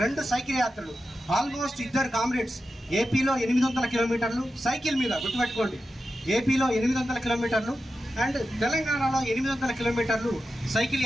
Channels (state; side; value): normal; both; correlation 0.91